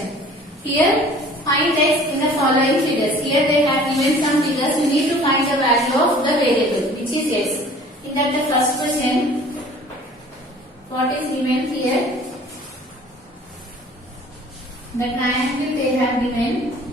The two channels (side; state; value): both; normal; correlation 0.49